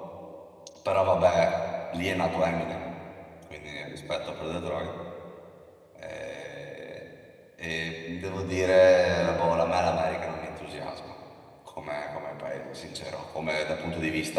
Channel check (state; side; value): identical; both; correlation 1.00